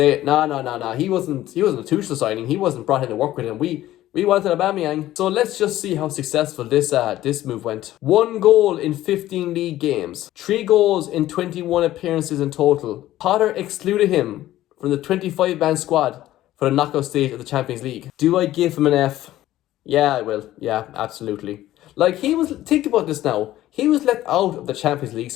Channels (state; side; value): quieter; right; 14.4 dB